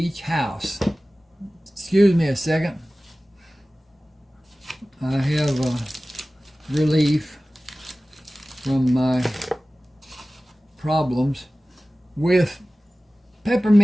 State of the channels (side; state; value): both; normal; correlation 0.97